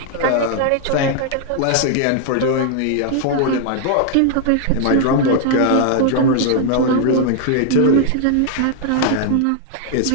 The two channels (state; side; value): different; both; correlation 0.00